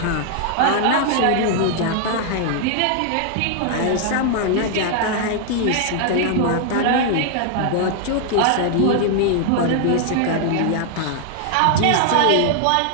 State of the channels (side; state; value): both; different; correlation 0.00